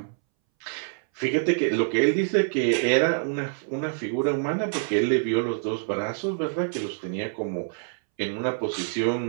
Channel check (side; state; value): left; silent; 61 dB below the other